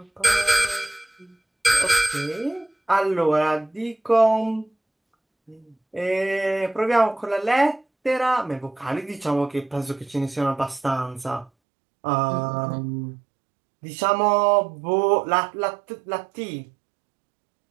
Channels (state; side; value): drops out; left; at 11.5 s